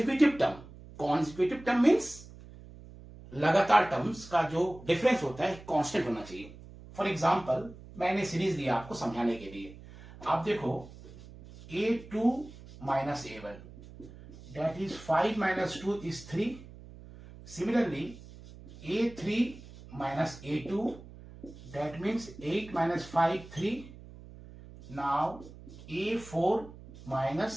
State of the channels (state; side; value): noise; right; hum, 18 dB below the sound